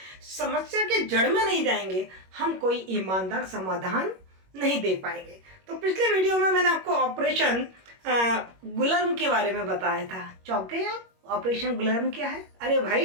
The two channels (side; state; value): left; late; 21 ms